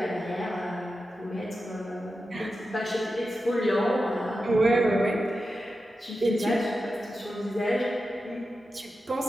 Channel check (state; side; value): normal; both; correlation 0.91